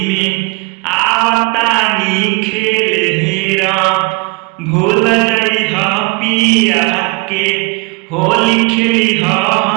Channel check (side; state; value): left; quieter; 27.0 dB